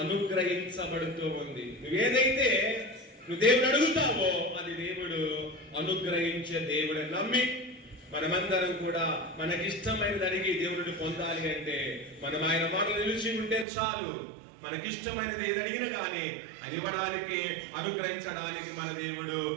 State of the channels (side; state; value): left; drops out; at 13.7 s